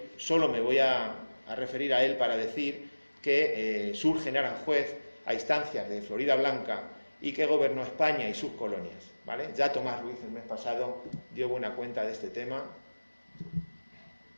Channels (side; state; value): both; inverted; correlation -1.00